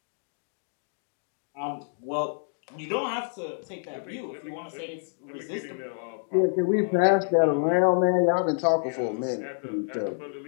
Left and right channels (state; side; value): silent; right; digital silence